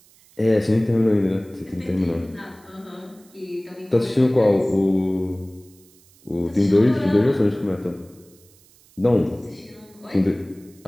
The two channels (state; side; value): noise; right; hiss, 29 dB below the sound